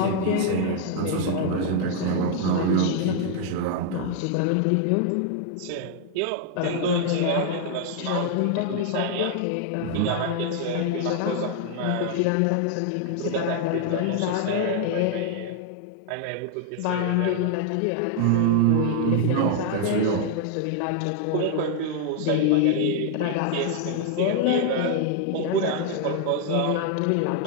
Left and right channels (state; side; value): different; both; correlation 0.00